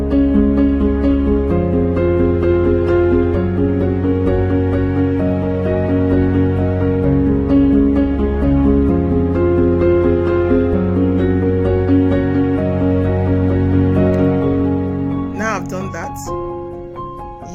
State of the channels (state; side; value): identical; both; correlation 1.00